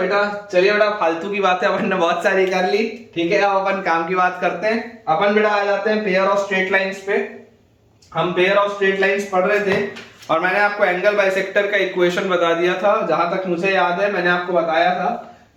फालतू की बातें अपन ने बहुत सारी कर ली, ठीक है। अब अपन काम की बात करते हैं। अपन बेटा आ जाते हैं पेयर ऑफ स्ट्रेट लाइंस पे। हम पेयर ऑफ स्ट्रेट लाइंस पढ़ रहे थे और मैंने आपको एंगल बाइसेक्टर का इक्वेशन बता दिया था। जहां तक मुझे याद है मैंने आपको बताया था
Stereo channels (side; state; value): both; identical; correlation 1.00